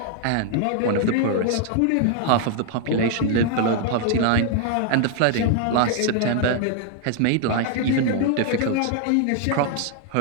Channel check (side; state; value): both; different; correlation 0.00